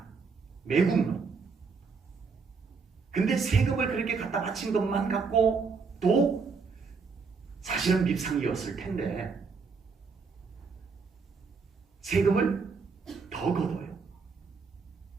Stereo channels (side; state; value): left; quieter; 5.0 dB